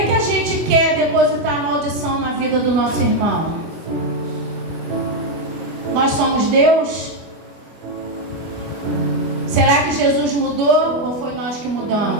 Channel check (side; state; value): left; late; 25 ms